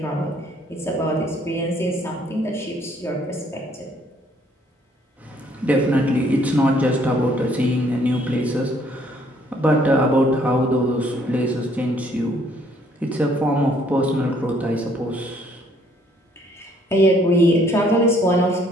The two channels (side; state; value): both; normal; correlation 0.64